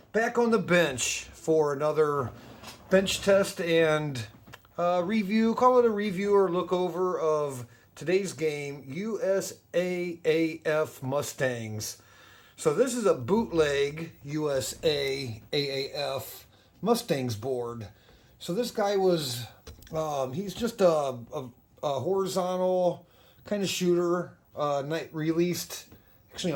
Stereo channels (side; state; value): both; identical; correlation 1.00